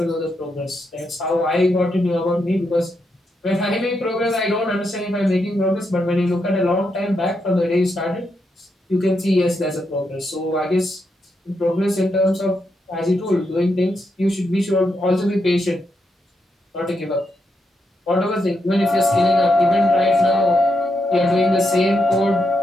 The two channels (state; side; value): normal; both; correlation 0.82